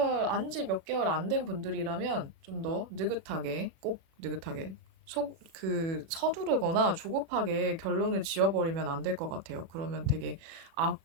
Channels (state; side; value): late; left; 36 ms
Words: 안지 몇 개월 안 된 분들이라면 좀 더 느긋하게, 꼭 느긋하게, 서두르거나 조급하게 결론을 지어버리면 안 될 것 같아요. 그러면 되게